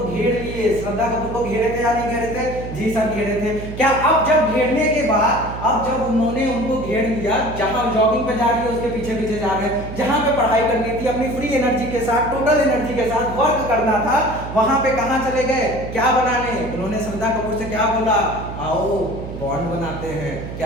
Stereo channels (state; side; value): noise; right; hum, 9 dB below the sound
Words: घेर लिए, श्रद्धा कपूर को घेरे थे या नहीं घेरे थे? जी सर घेरे थे। क्या अब जब घेरने के बाद, अब जब उन्होंने उनको घेर लिया, जहां जॉगिंग पे जा रही है उसके पीछे पीछे जा रहे हैं, जहां पे पढ़ाई करनी थी अपनी फ्री एनर्जी के साथ, टोटल एनर्जी के साथ वर्क करना था, वहां पे कहां चले गए, क्या बनाने? उन्होंने श्रद्धा कपूर से क्या बोला, आओ बॉन्ड बनाते हैं।